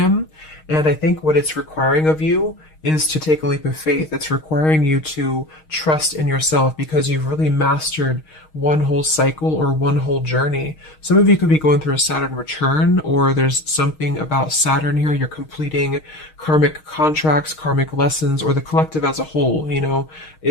And I think what it's requiring of you is to take a leap of faith. It's requiring you to trust in yourself, because you've really mastered one whole cycle or one whole journey. Some of you could be going through a Saturn return, or there's something about Saturn here. You're completing karmic contracts, karmic lessons, or the collective as a whole, you know,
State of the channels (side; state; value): right; late; 6.4 ms